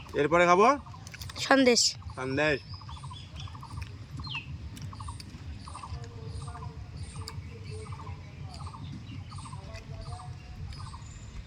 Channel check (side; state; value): both; identical; correlation 1.00